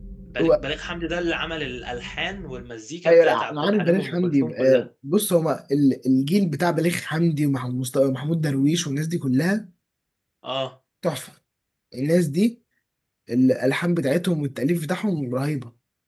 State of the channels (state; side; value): identical; both; correlation 1.00